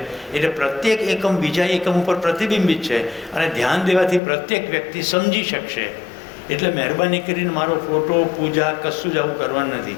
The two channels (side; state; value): right; drops out; at 4.2 s